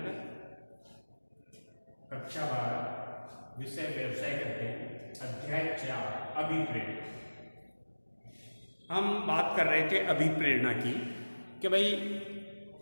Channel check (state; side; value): inverted; both; correlation -1.00